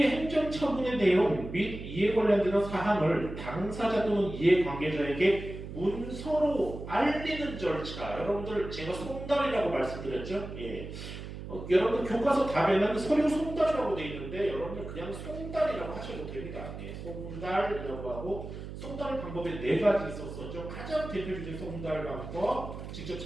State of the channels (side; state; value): right; noise; hum, 10 dB below the sound